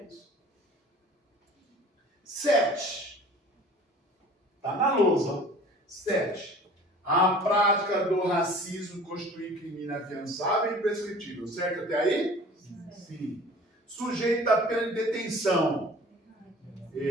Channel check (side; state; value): both; normal; correlation 0.46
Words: 7. Está na lousa. 7. A prática do racismo constitui crime inafiançável e imprescritível. Certo até aí? Sim. Sujeito à pena de detenção.